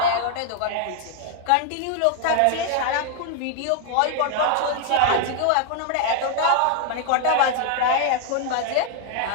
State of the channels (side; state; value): both; different; correlation 0.00